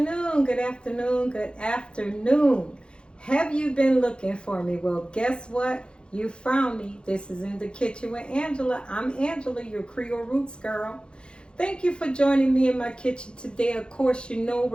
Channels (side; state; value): right; late; 0.053 ms